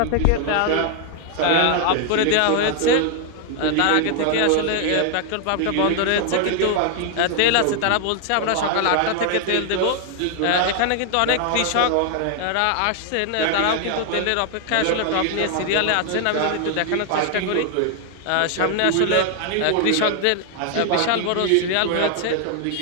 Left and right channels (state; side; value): different; both; correlation 0.00